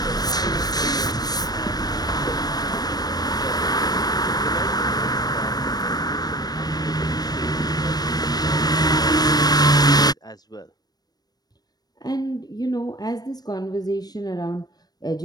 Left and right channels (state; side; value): late; right; 0.19 ms